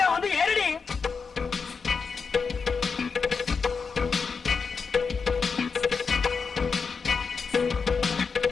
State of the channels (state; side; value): quieter; right; 5.3 dB